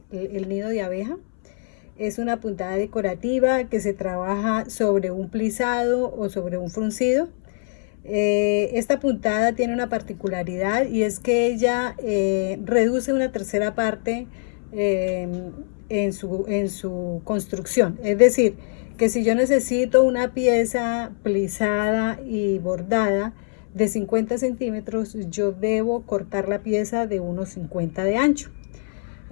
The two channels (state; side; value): silent; right; 63 dB below the other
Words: nido de abeja. Es una puntada decorativa que se trabaja sobre un plisado o sobre un fruncido. Esta puntada tiene una particularidad y es que ella reduce una tercera parte en su construcción. Es decir, que si yo necesito una pieza plisada y bordada de 50 centímetros, yo debo cortar la pieza de unos 50 de ancho.